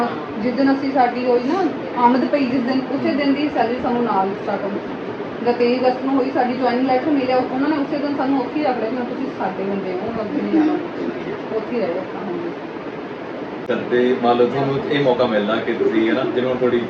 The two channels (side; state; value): both; identical; correlation 1.00